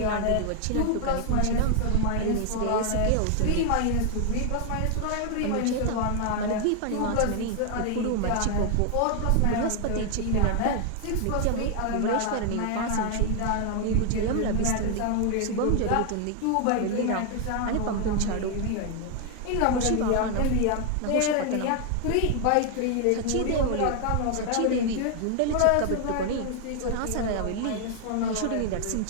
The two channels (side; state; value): both; different; correlation 0.00